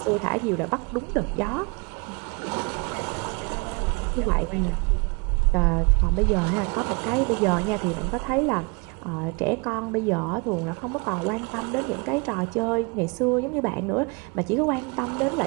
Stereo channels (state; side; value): quieter; left; 31.3 dB